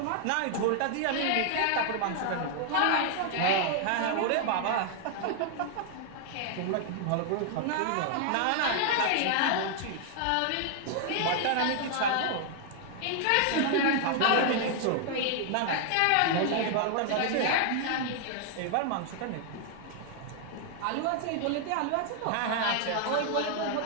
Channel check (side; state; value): both; different; correlation 0.00